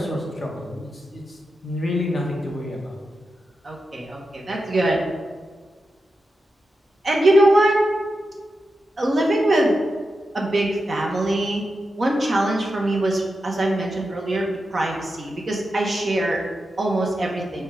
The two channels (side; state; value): both; normal; correlation 0.89